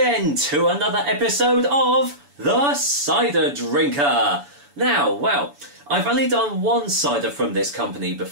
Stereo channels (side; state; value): left; late; 7.0 ms